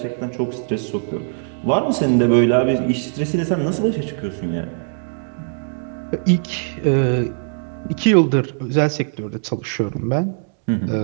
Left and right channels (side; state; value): left; silent; digital silence